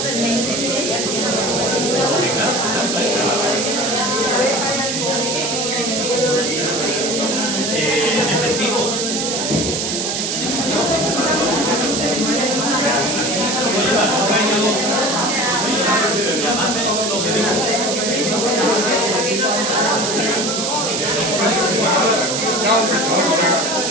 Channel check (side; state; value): right; noise; hiss, 1 dB below the sound